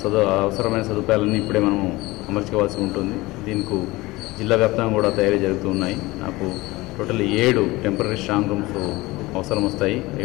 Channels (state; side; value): quieter; right; 20.5 dB